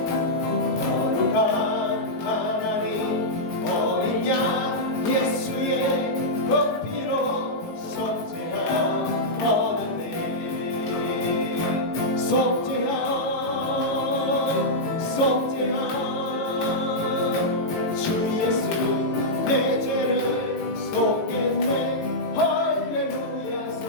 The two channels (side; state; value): right; late; 18 ms